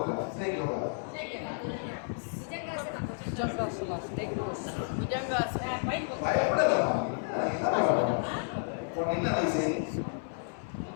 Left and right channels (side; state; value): right; silent; 56 dB below the other